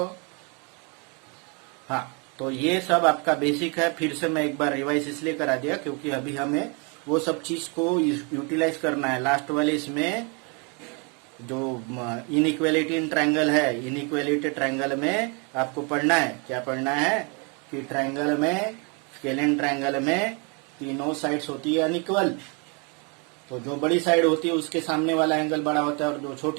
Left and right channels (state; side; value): quieter; left; 33.8 dB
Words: हाँ, तो ये सब आपका बेसिक है. फिर से मैं एक बार रिवाइज इसलिए करा दिया क्योंकि अभी हमें वो सब चीज को यूटिलाइज करना है. लास्ट वाले इसमें जो इनइक्वालिटी इन ट्रायंगल है, इनइक्वालिटी ट्रायंगल में आपको पढ़ना है. क्या पढ़ना है? कि ट्रायंगल में, स्केलिन ट्रायंगल में तीनों साइड्स होती है अनइक्वल. तो जो बड़ी साइड होती है उसके सामने वाला एंगल बड़ा होता है, और जो